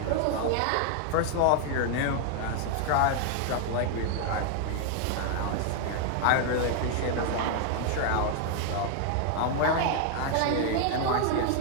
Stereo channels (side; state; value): both; different; correlation 0.00